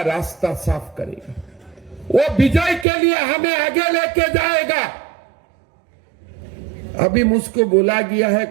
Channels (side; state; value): left; drops out; at 2.9 s